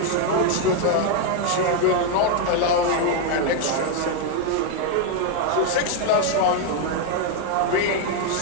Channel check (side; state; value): both; different; correlation 0.01